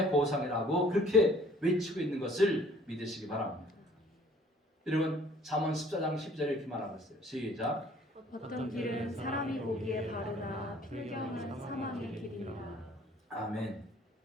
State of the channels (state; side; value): normal; both; correlation 0.56